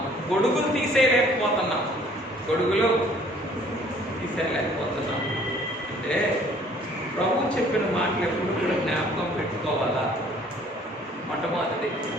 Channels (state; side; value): normal; both; correlation 0.57